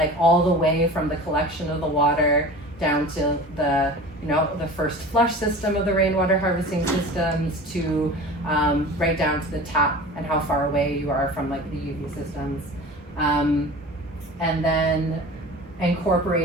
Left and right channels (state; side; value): normal; both; correlation 0.37